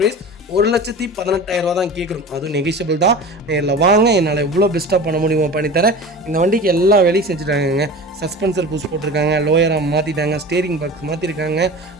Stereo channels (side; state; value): both; normal; correlation 0.34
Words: ப்ரைஸ் 1,18,000 தான் கேட்குறோம். அதுவும் நெகிஷியபிள் தான். நேரில் வாங்க, என்னால் எவ்வளோ பெஸ்ட்டாக பண்ண முடியுமோ பண்ணித்தரேன். இந்த வண்டிக்கு எல்லா வேலையும் செஞ்சுட்டாங்க. சஸ்பென்சர் புஷ் போட்டிருக்காங்க, லோயராக மாற்றிட்டாங்க, ஸ்டேரிங் பாக்ஸ் மாற்றிருக்காங்க,